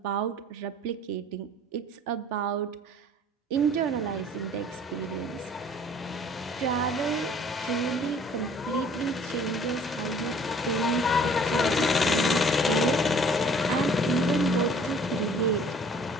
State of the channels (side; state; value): both; normal; correlation 0.53